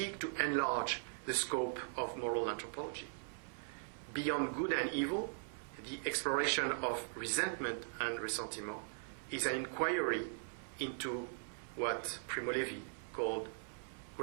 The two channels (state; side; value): silent; left; 51 dB below the other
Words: to enlarge the scope of moral anthropology. Beyond good and evil, the exploration of resentment and ressentiment is an inquiry into what Primo Levi called